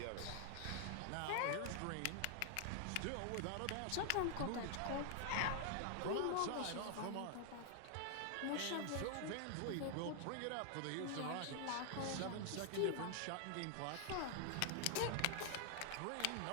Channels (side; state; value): both; different; correlation 0.00